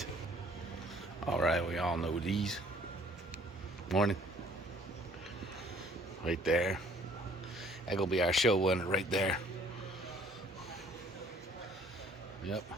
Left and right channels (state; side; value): normal; both; correlation 0.58